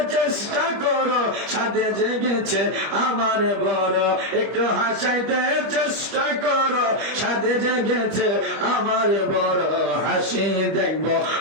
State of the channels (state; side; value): late; left; 25 ms